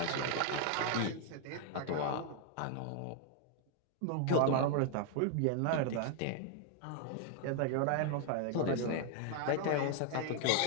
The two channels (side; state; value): both; different; correlation 0.00